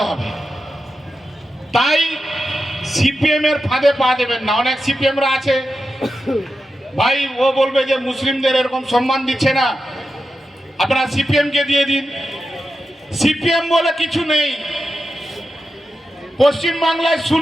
হবে। তাই সিপিএম এর ফাঁদে পা দেবেন না। অনেক সিপিএমরা আছে ভাই, ও বলবে যে মুসলিমদের এরকম সম্মান দিচ্ছে না, আপনারা সিপিএম কে দিয়ে দিন। সিপিএম বলে কিছু নেই, পশ্চিম বাংলায়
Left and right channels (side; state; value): both; normal; correlation 0.90